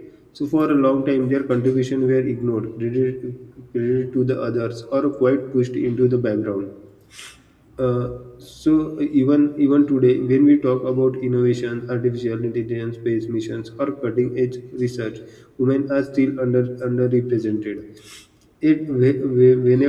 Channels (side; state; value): both; identical; correlation 1.00